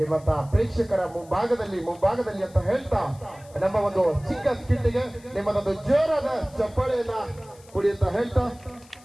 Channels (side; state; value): left; noise; hiss, 26 dB below the sound